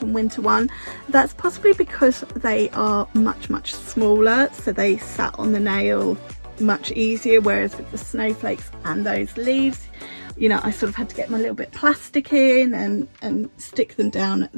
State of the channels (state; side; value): inverted; both; correlation -1.00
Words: winter one. That's possibly because they are much smaller, so they sat on the nail much easier, whereas with the snowflakes and those leaves, you know, I sort of had to get my little bit of plastic in and stick them down